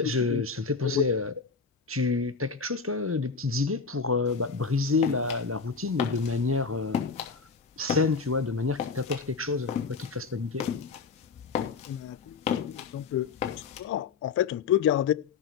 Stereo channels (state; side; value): quieter; right; 5.1 dB